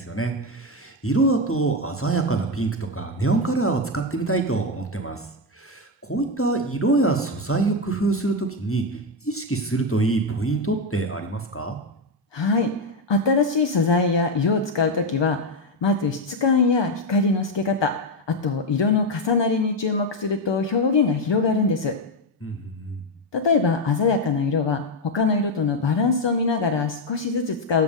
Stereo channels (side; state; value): both; normal; correlation 0.08